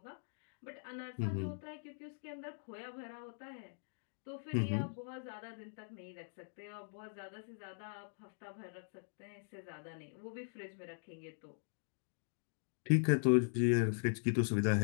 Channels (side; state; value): right; silent; digital silence